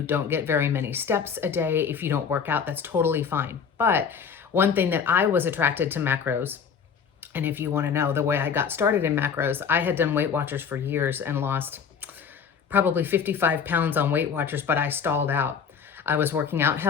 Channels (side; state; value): right; quieter; 6.7 dB